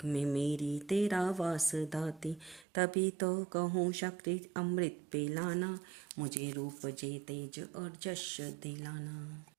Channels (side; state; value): left; drops out; at 2.7 s